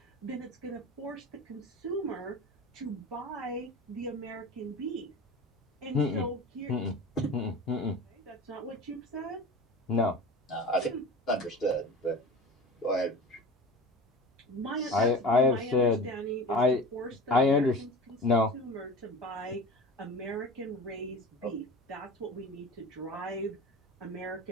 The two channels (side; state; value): both; normal; correlation 0.35